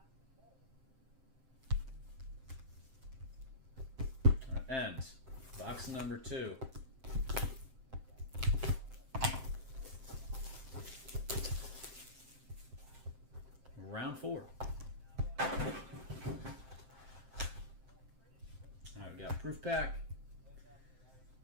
And box number 2. Round 4. Alright, we got proof pack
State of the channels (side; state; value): left; late; 7.6 ms